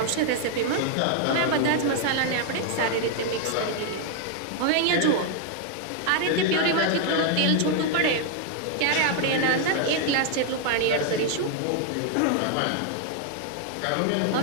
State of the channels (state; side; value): different; both; correlation 0.00